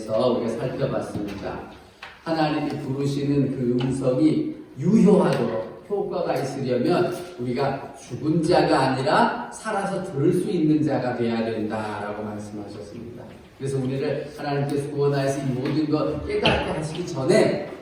우리가 살펴봤습니다. 하나님이 부르시는 그 음성이 유효하도록 효과가 있으려면 우리가 죽은 자가 아니라 살아서 들을 수 있는 자가 되어야 된다라고 말씀하셨습니다. 그래서 우리를 하나님께서 구원하여서 이 모든 것 깨닫게 하시기 전에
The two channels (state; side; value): identical; both; correlation 1.00